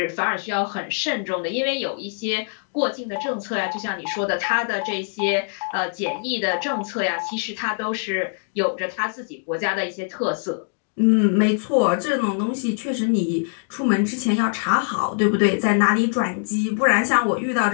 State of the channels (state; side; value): silent; right; digital silence